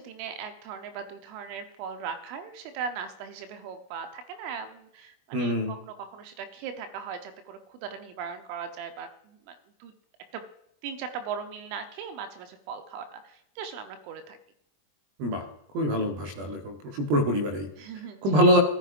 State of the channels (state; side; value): late; left; 21 ms